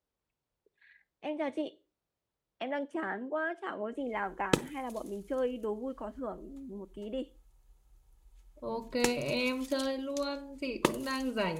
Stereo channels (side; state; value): both; identical; correlation 1.00